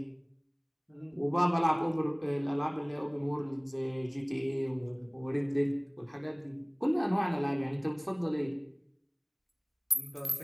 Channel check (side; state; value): both; identical; correlation 1.00